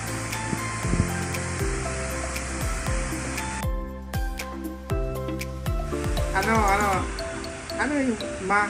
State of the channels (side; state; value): both; identical; correlation 1.00